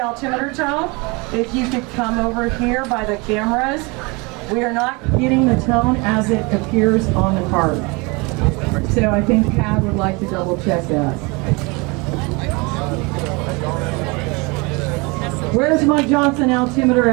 tone, if you could come over here by the cameras. We are not getting the tone as it appears on the card. So I think Pat would like to double check that. Where's my Johnson altimeter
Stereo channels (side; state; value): left; quieter; 27.7 dB